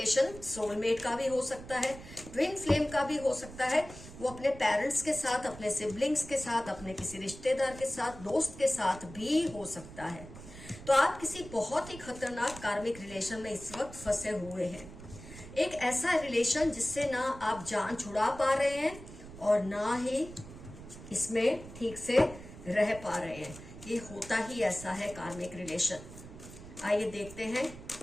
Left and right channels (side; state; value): right; noise; rumble, 15 dB below the sound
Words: सोलमेट का भी हो सकता है, ट्विन फ्लेम का भी हो सकता है। वो अपने पेरेंट्स के साथ, अपने सिबलिंग्स के साथ, अपने किसी रिश्तेदार के साथ, दोस्त के साथ भी हो सकता है। तो आप किसी बहुत ही खतरनाक कार्मिक रिलेशन में इस वक्त फंसे हुए हैं। एक ऐसा रिलेशन जिससे ना आप जान छुड़ा पा रहे हैं और ना ही इसमें ठीक से रह पा रहे हैं। ये होता ही ऐसा है कार्मिक रिलेशन। आइए देखते हैं